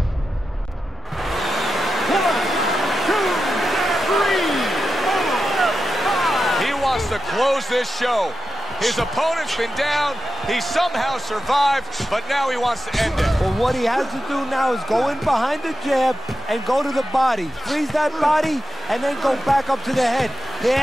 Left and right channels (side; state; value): both; normal; correlation 0.90